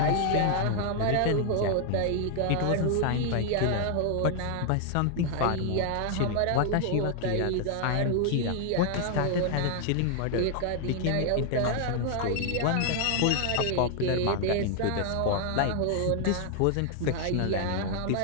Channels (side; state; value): both; different; correlation 0.00